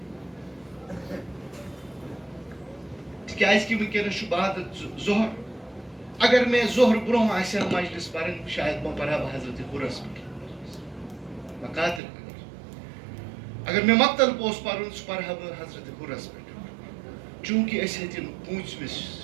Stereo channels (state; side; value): drops out; left; at 12.0 s